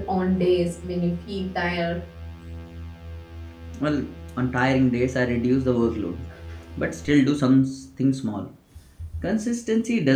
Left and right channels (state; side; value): identical; both; correlation 1.00